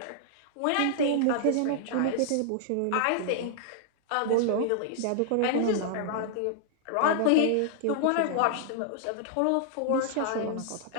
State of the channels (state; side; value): different; both; correlation -0.01